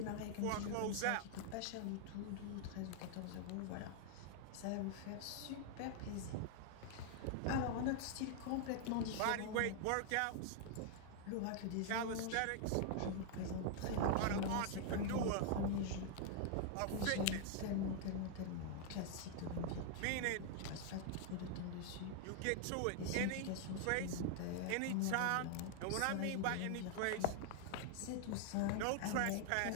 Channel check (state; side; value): different; both; correlation 0.00